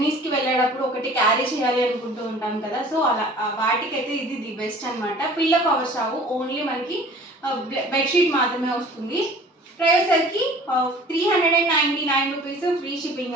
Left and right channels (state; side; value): normal; both; correlation 0.47